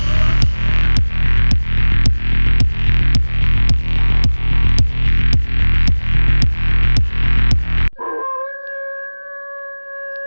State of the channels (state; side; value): inverted; both; correlation -1.00